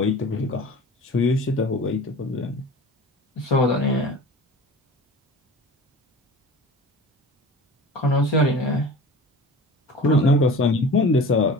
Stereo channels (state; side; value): normal; both; correlation 0.39